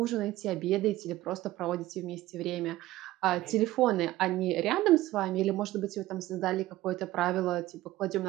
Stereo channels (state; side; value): quieter; left; 16.3 dB